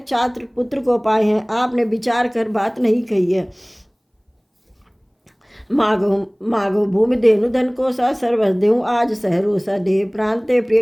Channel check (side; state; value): both; identical; correlation 1.00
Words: 4 पुत्र को पाए हैं, आपने विचार कर बात नहीं कही है। मागो भूमि देनु धन को सा, सर्वस देहु आज सहरो सा, देह प्रांते